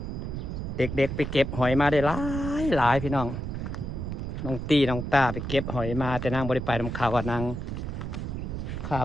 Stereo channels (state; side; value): noise; right; rumble, 5 dB below the sound